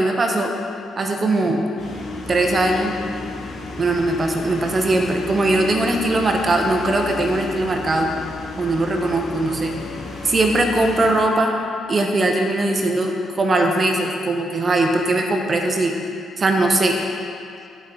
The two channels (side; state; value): both; normal; correlation 0.82